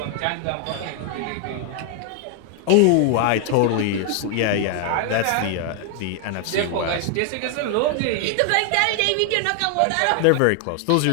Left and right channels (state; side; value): different; both; correlation 0.00